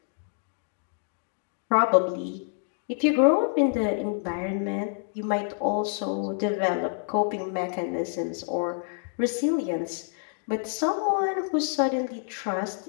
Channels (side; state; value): right; silent; digital silence